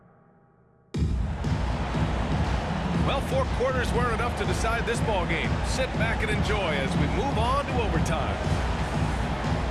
Well, 4 quarters weren't enough to decide this ball game. Sit back and enjoy as we move on to overtime.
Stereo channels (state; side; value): identical; both; correlation 1.00